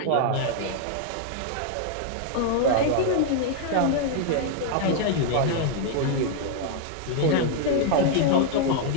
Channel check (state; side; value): different; both; correlation 0.00